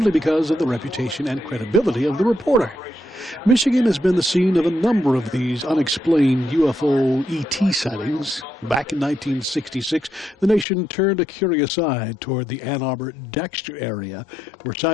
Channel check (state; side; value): drops out; right; at 10.7 s